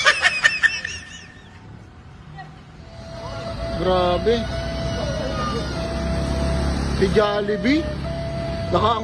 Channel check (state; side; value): identical; both; correlation 1.00